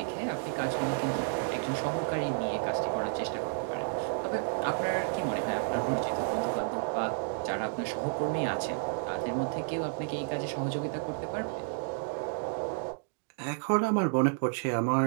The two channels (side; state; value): left; silent; digital silence